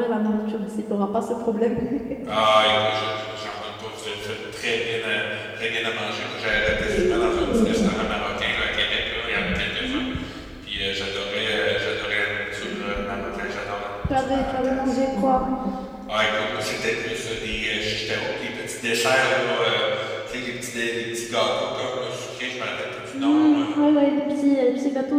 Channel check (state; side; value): identical; both; correlation 1.00